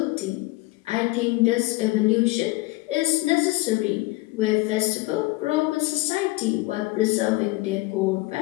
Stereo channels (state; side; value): quieter; right; 21.1 dB